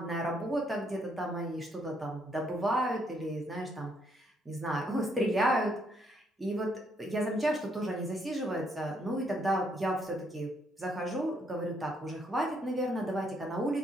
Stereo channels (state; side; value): normal; both; correlation 0.72